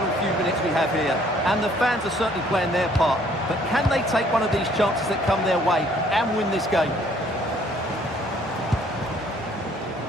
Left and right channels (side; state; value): both; normal; correlation 0.61